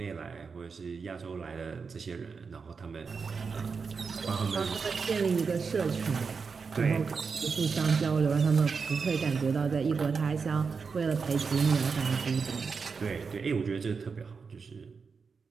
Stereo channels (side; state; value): left; quieter; 5.3 dB